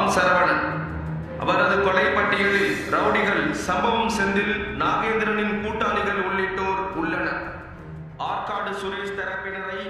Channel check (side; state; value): both; identical; correlation 1.00